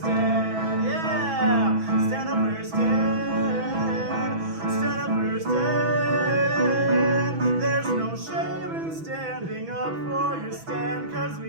Yeah. Stand up for your stand. Stand up for your stand. There's no shame in standing up for your stand. Cause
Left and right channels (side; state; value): left; late; 6.1 ms